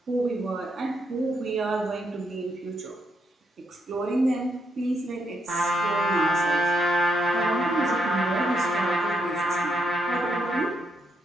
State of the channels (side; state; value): both; normal; correlation 0.78